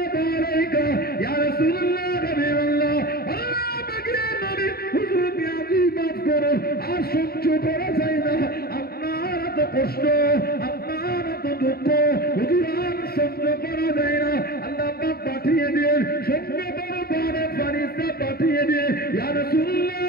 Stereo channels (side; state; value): right; late; 0.45 ms